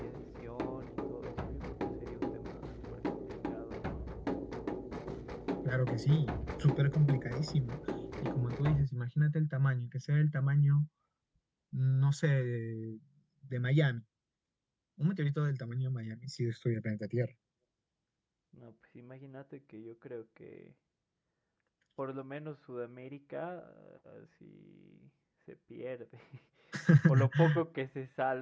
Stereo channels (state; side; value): identical; both; correlation 1.00